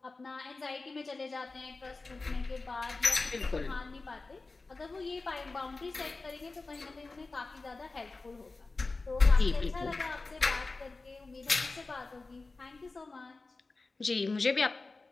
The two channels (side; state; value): right; quieter; 3.6 dB